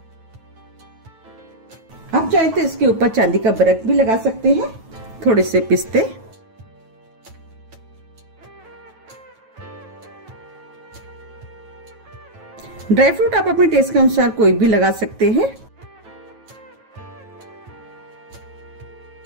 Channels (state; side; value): late; left; 9.2 ms